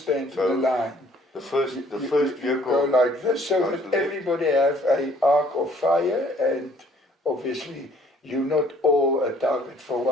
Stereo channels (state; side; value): normal; both; correlation 0.59